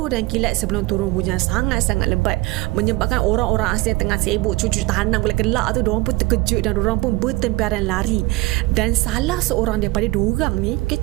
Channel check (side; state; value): left; quieter; 20.9 dB